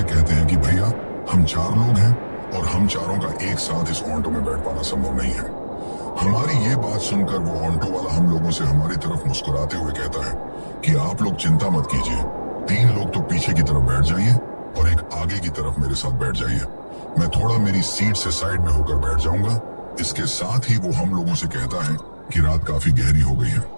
कहते हैं कि भैया, हम 4 लोग हैं और हम चारों का एक साथ इस ऑटो में बैठ पाना संभव नहीं है। हमारी ये बात सुनकर वो ऑटो वाला हम लोगों से हमारी तरफ मुस्कुराते हुए कहता है कि आप लोग चिंता मत कीजिए, 3 लोग तो पीछे की तरफ बैठ जाइए और एक आगे की तरफ मेरे साथ बैठ जाइए। मैं थोड़ा मेरी सीट से साइड में होकर बैठ जाऊंगा। इसके साथ ही वो हम लोगों से कहता है कि रात काफी गहरी हो गई है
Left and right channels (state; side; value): inverted; both; correlation -1.00